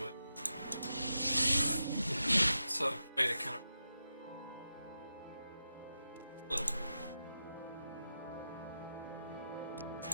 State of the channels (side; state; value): both; inverted; correlation -0.89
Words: with. So way to kind of little.